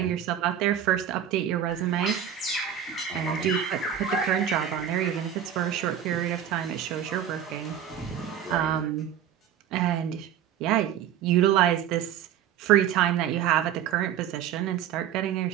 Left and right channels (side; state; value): left; quieter; 9.6 dB